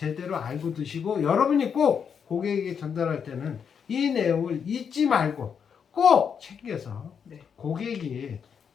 알고 드시고 여러분이 꼭 고객에게 전달할 때는 이 내용을 잊지 말고 꼭 챙겨서 네. 고객이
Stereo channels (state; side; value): quieter; right; 7.0 dB